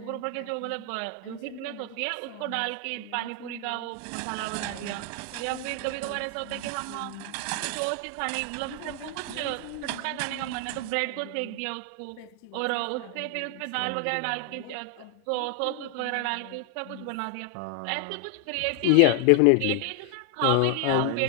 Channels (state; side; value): different; both; correlation 0.00